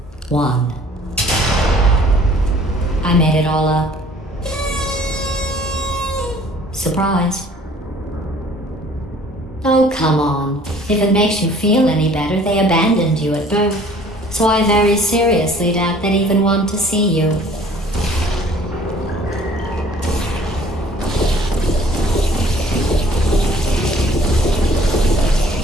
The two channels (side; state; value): both; normal; correlation 0.54